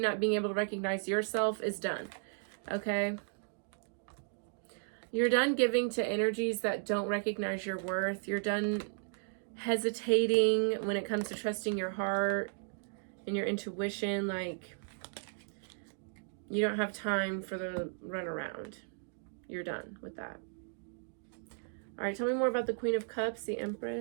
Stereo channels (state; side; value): silent; left; digital silence